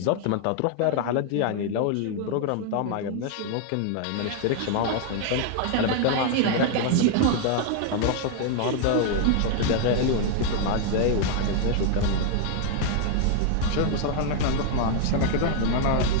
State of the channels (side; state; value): both; different; correlation 0.00